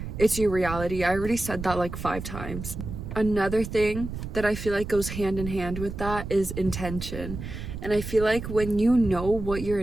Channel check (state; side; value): noise; right; rumble, 8 dB below the sound